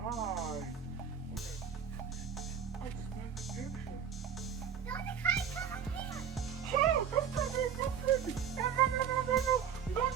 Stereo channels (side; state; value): left; quieter; 7.8 dB